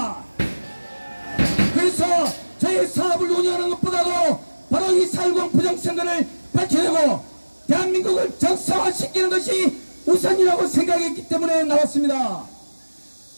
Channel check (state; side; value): inverted; both; correlation -1.00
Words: 그래서 저희 사업을 운영하는 것보다도 바로 이 4.10 부정선거를 밝혀내고 대한민국을 정상화시키는 것이 우선이라고 생각했기 때문에 나왔습니다.